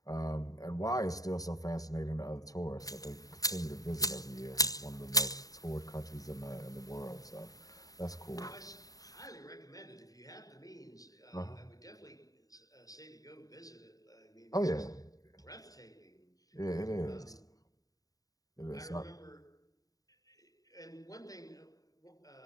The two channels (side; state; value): right; late; 0.18 ms